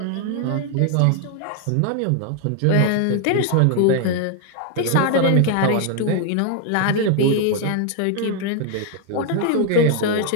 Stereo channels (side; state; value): both; different; correlation 0.00